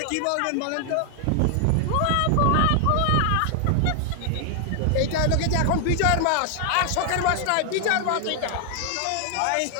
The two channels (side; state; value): both; different; correlation 0.00